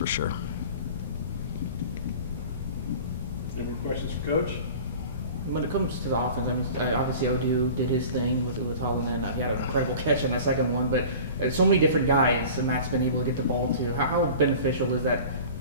sure. Any questions for Coach? When it comes to the offense, obviously Odu did his thing with Holland, and he had an incredible catch on my second one. But so many different guys that Matt's been able to get the ball to. How beneficial is that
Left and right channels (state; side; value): inverted; both; correlation -0.40